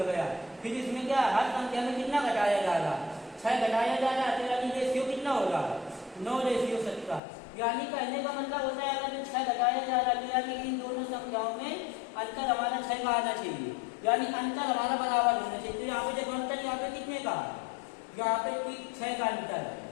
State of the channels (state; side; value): drops out; right; at 7.2 s